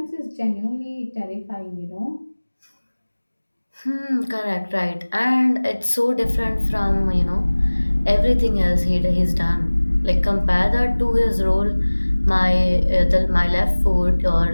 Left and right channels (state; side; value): inverted; both; correlation -1.00